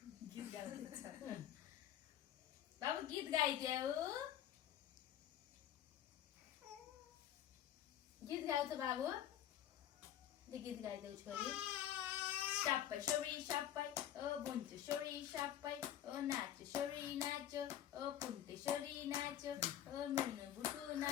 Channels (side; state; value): right; quieter; 11.3 dB